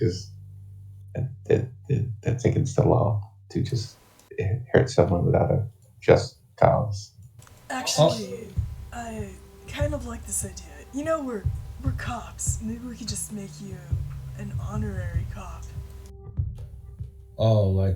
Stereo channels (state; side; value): identical; both; correlation 1.00